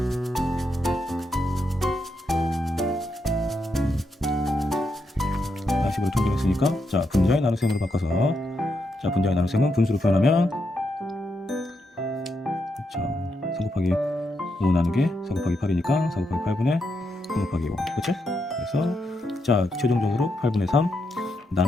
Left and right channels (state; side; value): normal; both; correlation 0.82